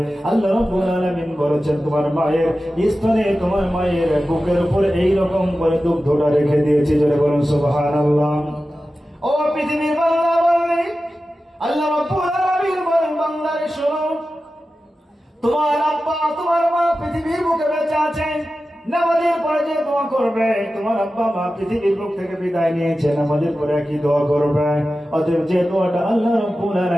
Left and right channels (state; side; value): normal; both; correlation 0.94